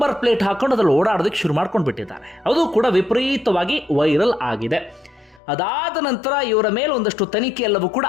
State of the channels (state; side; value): drops out; right; at 5.4 s